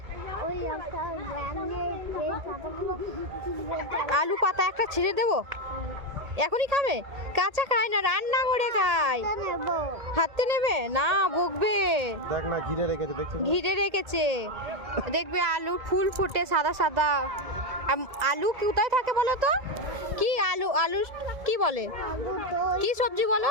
আলু পাতা একটা ছিঁড়ে দেবো? এখনই খাবে? কাঁচা খায় না, রান্না করে খায়। হাতে নেবে না, বকবে। দেখ না, ঘিরে রেখেছে, দেখছিস? ঘিরে রেখেছে, দেখবে আলু ফুল ফুটে সাদা সাদা। আলু কোথায় থাকে বলো তো? কি আলু, আলু কি বলে, কি সবজি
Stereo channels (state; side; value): late; left; 1.8 ms